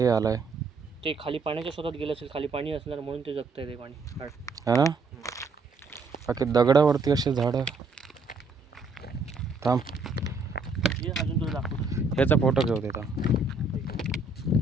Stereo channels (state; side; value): quieter; left; 3.7 dB